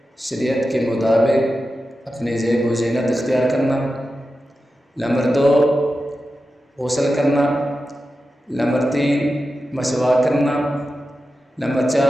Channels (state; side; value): normal; both; correlation 0.91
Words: शरीयत के मुताबिक अपनी ज़ेब व ज़ीनत इख्तियार करना। नंबर 2, गुस्ल करना। नंबर 3, मसवाक करना। नंबर